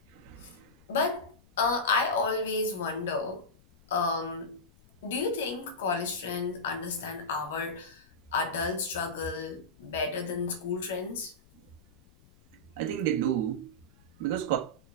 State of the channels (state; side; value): noise; left; rumble, 27 dB below the sound